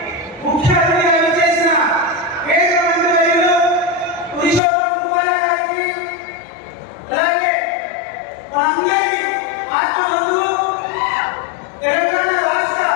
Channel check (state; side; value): drops out; right; at 4.6 s